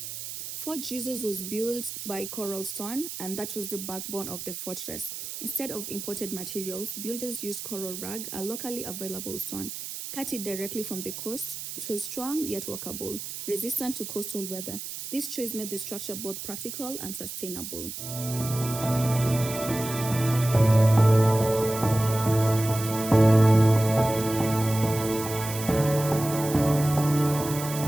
Fort Jesus was built by coral stone, and that was the backbone of the fortress. Instead of imported materials, builders used coral rag, a locally available stone. Cut it directly from the coast. It was strong yet workable, resistant to coastal weather. This choice made the structure both practical and sustainable.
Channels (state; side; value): noise; right; hiss, 8 dB below the sound